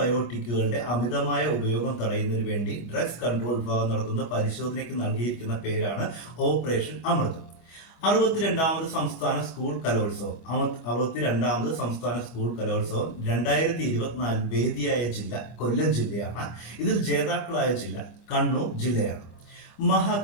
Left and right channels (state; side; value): late; right; 25 ms